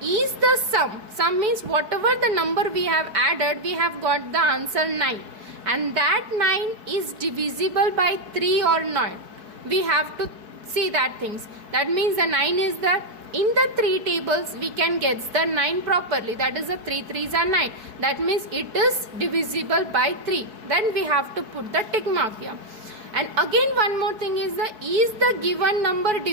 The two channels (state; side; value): late; left; 4.6 ms